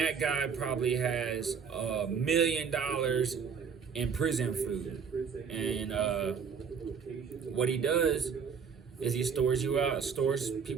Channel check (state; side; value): quieter; left; 6.4 dB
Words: guy probably has $1 million in prison food. And what he does is he stores